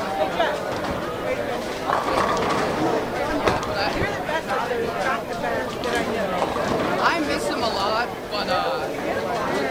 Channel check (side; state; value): both; identical; correlation 1.00